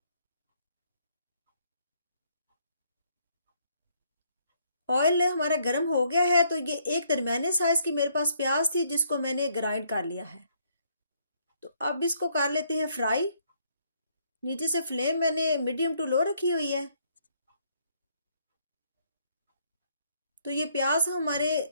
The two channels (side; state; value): both; inverted; correlation -0.69